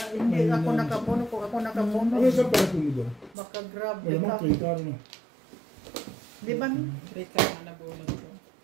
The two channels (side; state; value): left; drops out; at 3.4 s